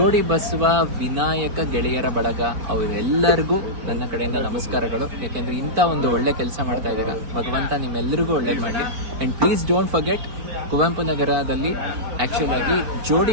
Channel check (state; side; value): late; left; 4.9 ms